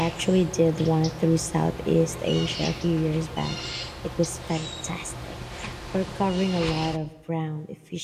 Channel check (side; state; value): both; identical; correlation 1.00